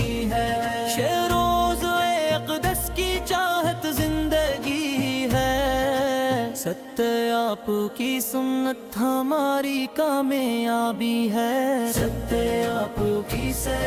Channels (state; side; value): identical; both; correlation 1.00